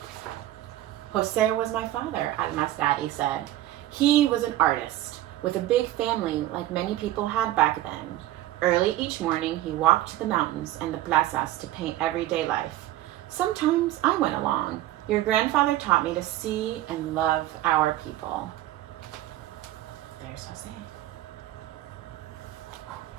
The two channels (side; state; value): left; quieter; 14.8 dB